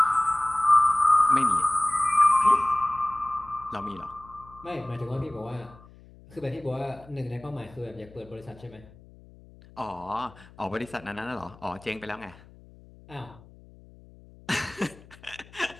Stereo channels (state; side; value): noise; left; hum, 23 dB below the sound